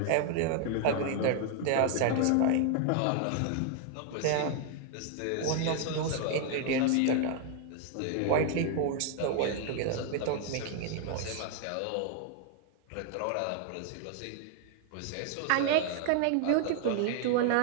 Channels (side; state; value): both; different; correlation 0.00